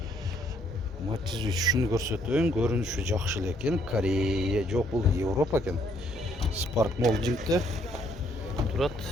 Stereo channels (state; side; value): normal; both; correlation 0.68